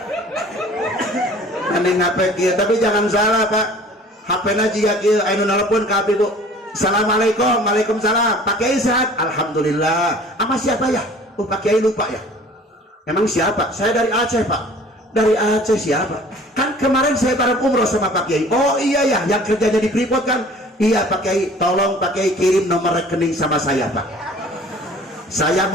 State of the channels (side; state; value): both; normal; correlation 0.49